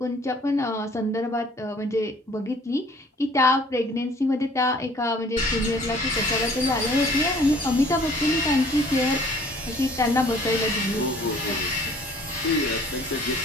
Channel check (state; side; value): normal; both; correlation 0.54